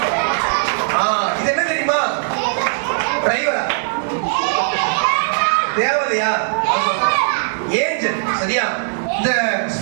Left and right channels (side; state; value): left; silent; 62 dB below the other